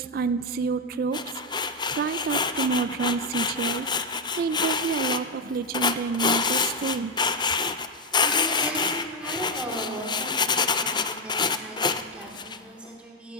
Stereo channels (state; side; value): normal; both; correlation 0.05